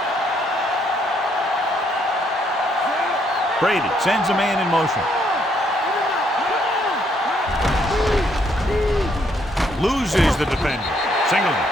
Brady sends a man in motion. Loses the defender. Singleton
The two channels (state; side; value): normal; both; correlation 0.71